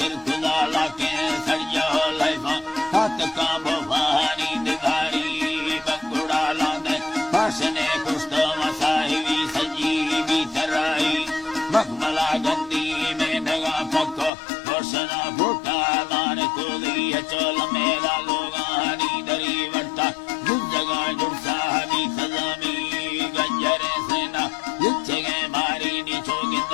लाके सड़िया लाइफा हाथ का भवानी दिखारी बंगुड़ा लांदे भाषणे कुष्ट मसाहिवी संजीवी तराई मखमला गंदी में नगा पक्को रोशना फूटा दान को दिया चोल मेरा लोगानी दरी वट्टा जगा जुड़सा भी सजामी गंजरे सेना युच्चगे मारी नीचो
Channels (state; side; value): drops out; right; at 14.3 s